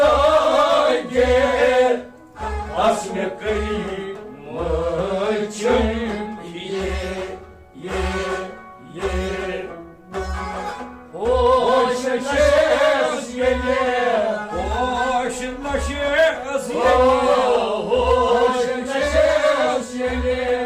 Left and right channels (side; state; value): both; identical; correlation 1.00